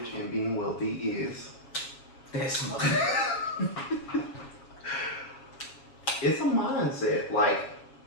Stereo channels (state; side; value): late; right; 7.3 ms